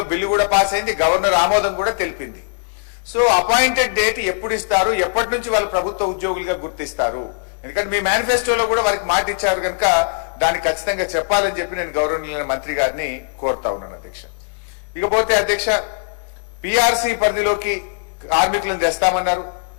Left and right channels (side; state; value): right; silent; digital silence